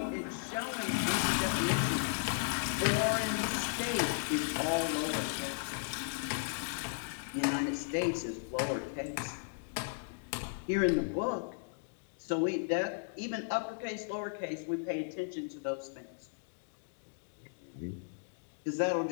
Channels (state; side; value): silent; right; digital silence